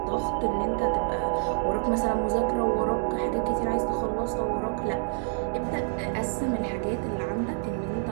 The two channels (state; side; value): silent; left; 60 dB below the other